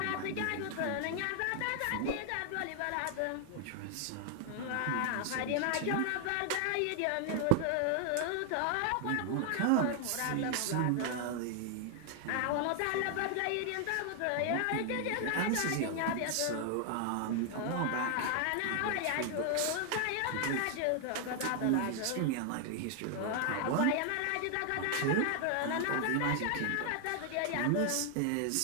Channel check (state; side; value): different; both; correlation 0.00